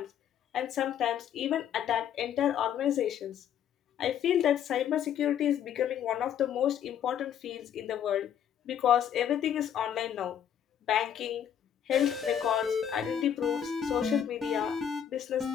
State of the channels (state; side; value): quieter; right; 9.2 dB